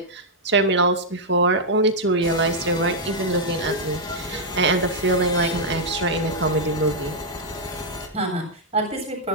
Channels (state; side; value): normal; both; correlation -0.05